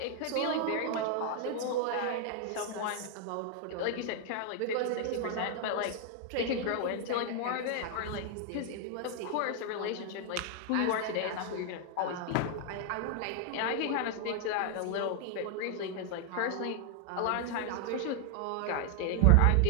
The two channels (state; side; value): different; both; correlation 0.00